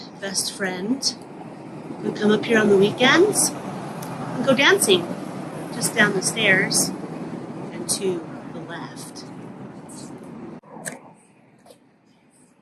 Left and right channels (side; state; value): both; identical; correlation 1.00